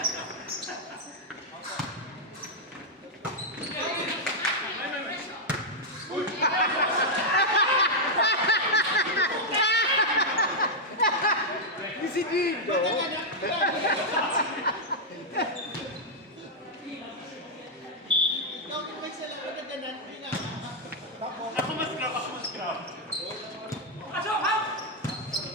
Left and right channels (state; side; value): normal; both; correlation -0.03